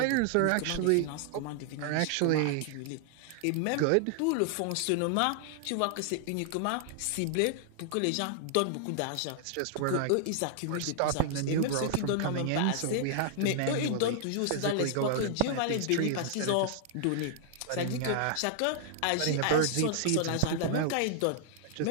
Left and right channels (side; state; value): both; different; correlation -0.01